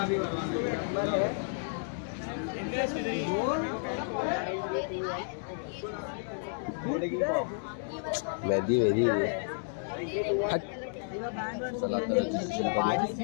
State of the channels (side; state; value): right; silent; digital silence